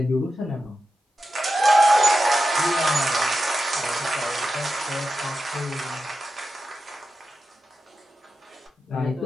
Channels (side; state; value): both; normal; correlation 0.91